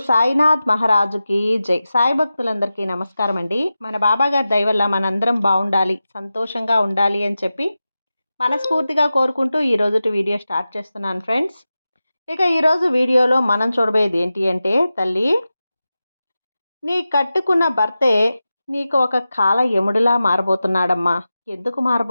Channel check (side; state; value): both; inverted; correlation -0.94